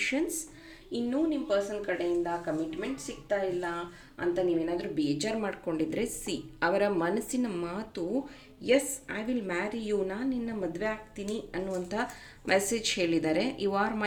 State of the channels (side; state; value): both; identical; correlation 1.00